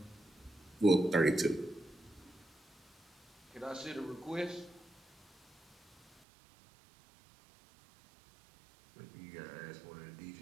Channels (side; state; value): left; drops out; at 6.2 s